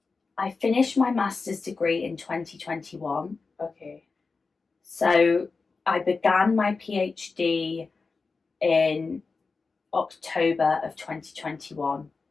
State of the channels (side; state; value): right; quieter; 4.3 dB